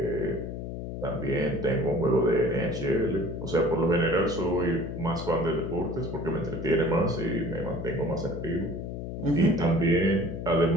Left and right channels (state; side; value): noise; left; hum, 7 dB below the sound